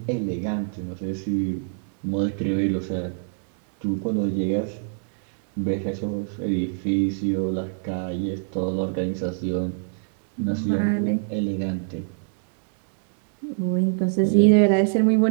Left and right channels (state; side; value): silent; left; digital silence